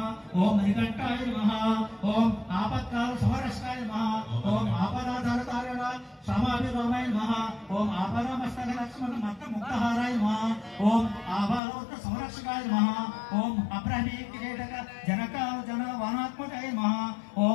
ఓం మణికంఠాయ నమః ఓం ఆపత్కాల సమరక్షకాయ నమః ఓం ఆపదాధారకారణ సమాభిరామాయ నమః ఓం ఆపదామస్తక లక్ష్మణ మత్త ముక్తహారాయ నమః ఓం ఆభాలోక సంరక్షకాయ నమః ఓం అబ్రహ్మీ కిరీటక జనకాల జన వానాత్మకాయ నమః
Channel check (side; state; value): right; drops out; at 11.6 s